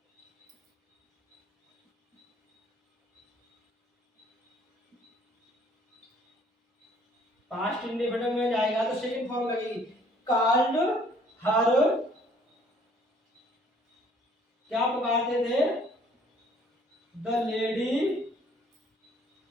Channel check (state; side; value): normal; both; correlation 0.59